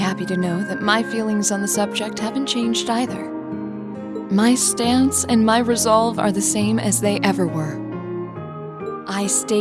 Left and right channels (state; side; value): identical; both; correlation 1.00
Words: to know that my feelings on the subject haven't changed either. My stance and my resolve are the same as they ever were. I